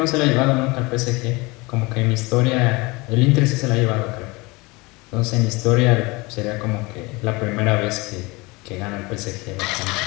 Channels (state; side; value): quieter; right; 24.6 dB